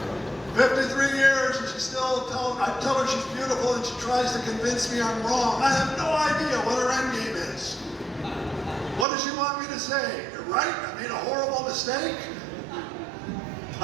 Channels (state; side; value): drops out; left; at 9.1 s